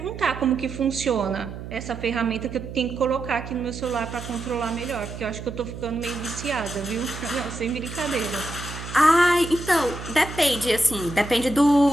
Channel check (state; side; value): noise; right; hum, 10 dB below the sound